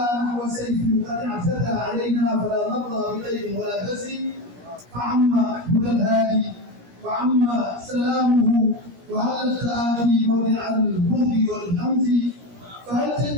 نحو سيف قد اعتدى علينا، فلا نرضى بغير ولا بس، فعم هدى الهادي وعم سلامه، وهل التآخي موضع البغض والهمز، فهل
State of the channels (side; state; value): left; late; 17 ms